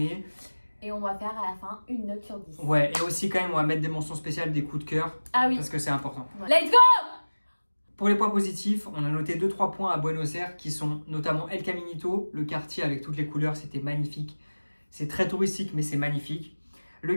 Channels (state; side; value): inverted; both; correlation -1.00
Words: Et on va faire à la fin une note sur 10. Ouais, et aussi quand même, on va mettre des mentions spéciales, des coups de cœur. Ah oui. Parce que c'est important. Ouais. Let's go! Pour les points positifs, on a noté 2-3 points à Buenos Aires qui sont notamment El Caminito, le quartier avec toutes les couleurs, c'était magnifique. C'est très touristique, mais c'est magnifique. Le